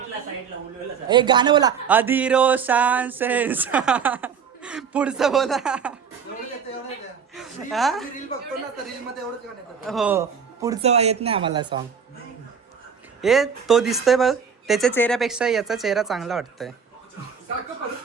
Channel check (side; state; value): left; quieter; 6.6 dB